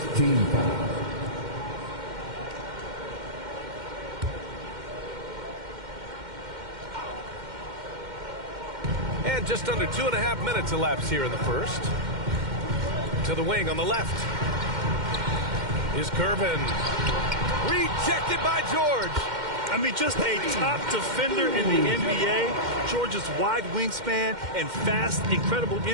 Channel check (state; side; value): late; left; 2.1 ms